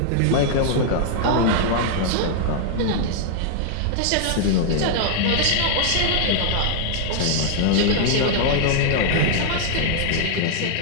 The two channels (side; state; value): both; different; correlation -0.01